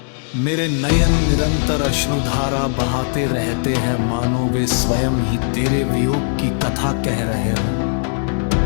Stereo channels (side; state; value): right; silent; digital silence